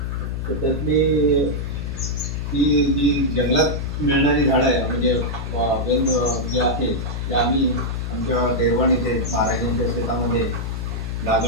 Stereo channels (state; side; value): noise; left; hum, 3 dB below the sound